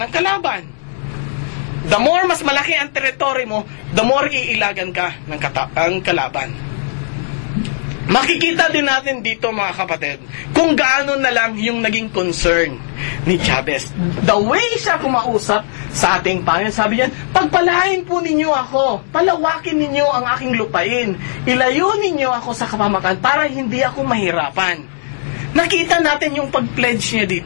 ng kalaban. The more mas malaki ang teritoryo mo, the more iilagan ka ng kalaban. Makikita din natin dito, mga kapatid, kung gaano na lang yung naging concern ni Jabez. The way siya kumausap sa ating Panginoon, sabi niya, pagpalain po ninyo ako, palawakin ninyo ang aking lupain, ilayo ninyo ako sa kapahamakan para hindi ako mahirapan. Nakita natin yung pag-pledge niya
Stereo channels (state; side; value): silent; right; 62 dB below the other